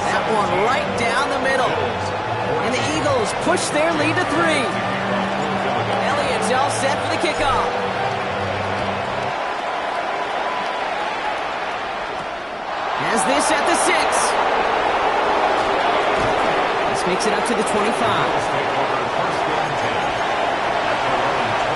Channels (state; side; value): identical; both; correlation 1.00